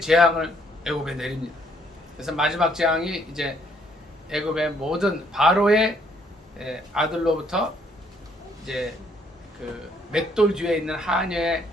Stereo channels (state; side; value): normal; both; correlation 0.67